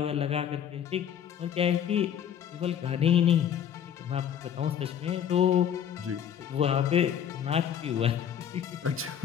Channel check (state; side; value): quieter; right; 9.1 dB